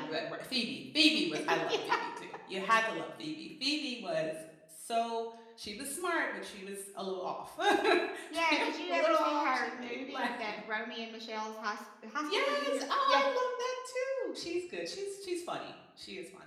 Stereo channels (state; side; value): identical; both; correlation 1.00